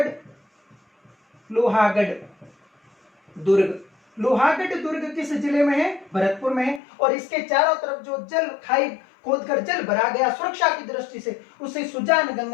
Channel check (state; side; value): drops out; right; at 6.8 s